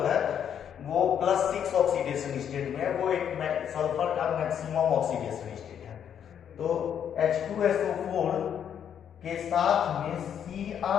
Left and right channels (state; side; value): quieter; right; 8.8 dB